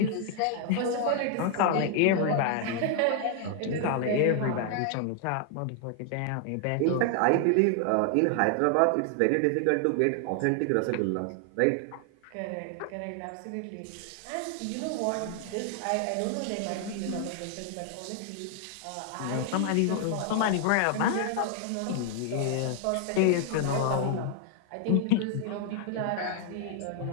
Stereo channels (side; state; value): both; different; correlation 0.00